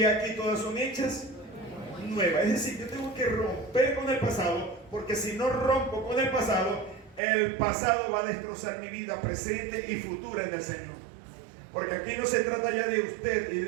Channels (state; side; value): drops out; left; at 7.2 s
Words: aquí todas son hechas nuevas. Es decir, yo tengo que romper con el pasado, porque si no rompo con el pasado va a destrozar mi vida presente y futura en el Señor. Porque aquí no se trata ya de usted y